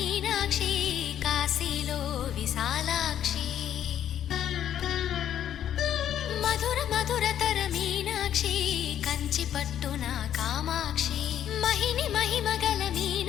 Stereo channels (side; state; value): right; quieter; 10.4 dB